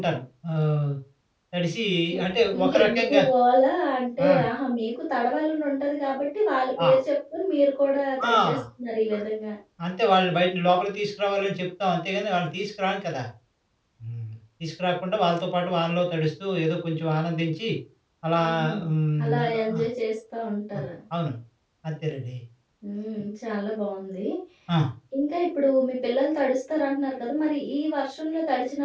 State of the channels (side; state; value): both; identical; correlation 1.00